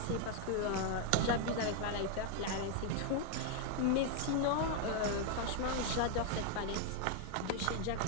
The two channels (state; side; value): different; both; correlation 0.00